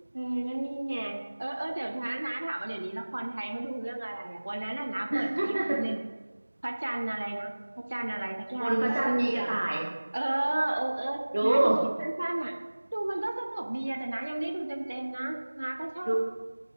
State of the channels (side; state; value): both; inverted; correlation -1.00